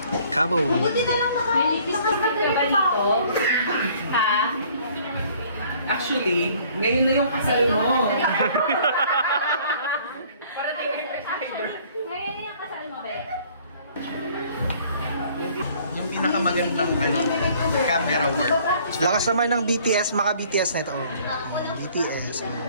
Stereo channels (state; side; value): inverted; both; correlation -0.57